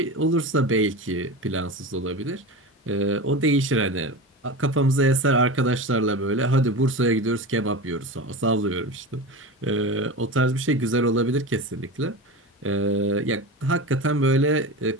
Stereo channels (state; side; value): normal; both; correlation 0.26